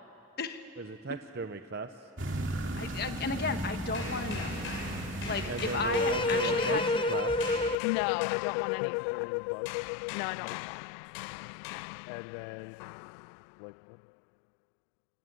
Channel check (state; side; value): drops out; right; at 7.8 s